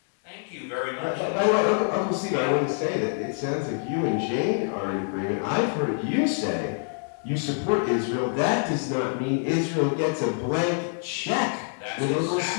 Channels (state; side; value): silent; right; 61 dB below the other